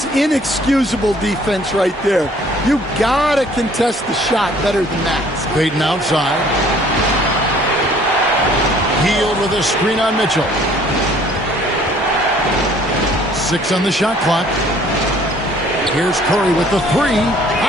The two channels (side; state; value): both; normal; correlation 0.57